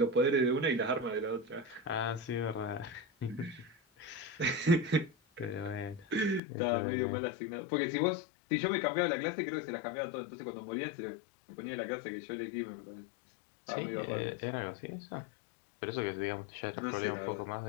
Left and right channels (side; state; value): right; drops out; at 6.4 s